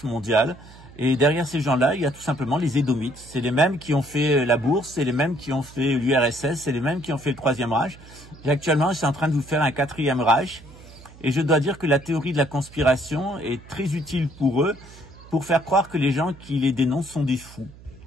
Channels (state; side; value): noise; right; hum, 21 dB below the sound